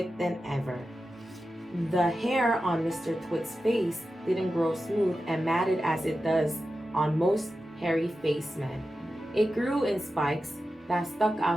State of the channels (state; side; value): normal; both; correlation 0.92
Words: than ever. The hair on Mr. Twit's face didn't grow smooth and matted as it does on most hairy-faced men. It grew in spikes that stuck